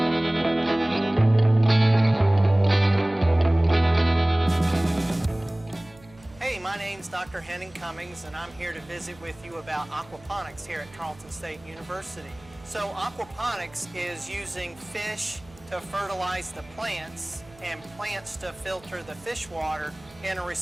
Hey, my name's Dr. Hennen Cummings, and I'm here to visit with you about aquaponics here at Tarleton State University. So aquaponics is using fish to fertilize the plants and plants to filter the fish water in a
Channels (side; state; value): right; noise; hum, 24 dB below the sound